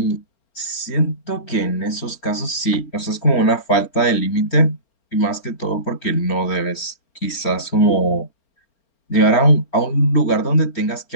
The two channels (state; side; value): late; right; 4.4 ms